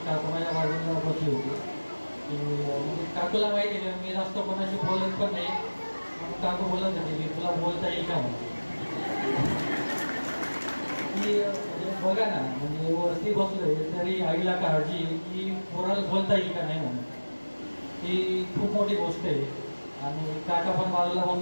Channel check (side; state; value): both; inverted; correlation -1.00